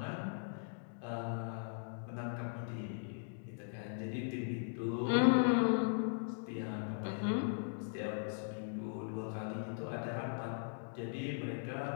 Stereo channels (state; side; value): silent; right; digital silence